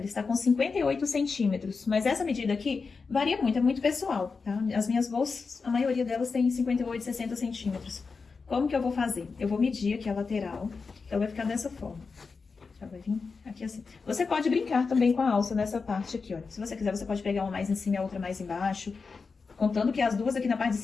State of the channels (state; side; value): quieter; right; 4.7 dB